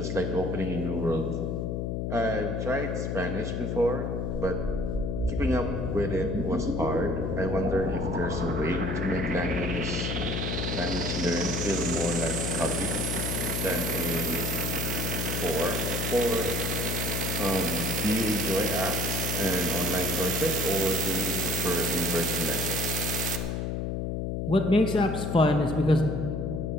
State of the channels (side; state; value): left; noise; hum, 1 dB below the sound